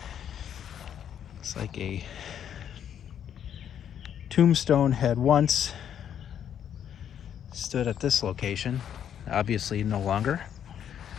It's like a tombstone had once stood at this location, obviously no longer.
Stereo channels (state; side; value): quieter; right; 9.3 dB